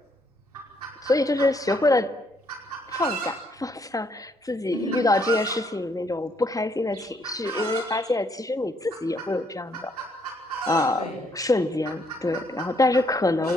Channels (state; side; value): normal; both; correlation 0.70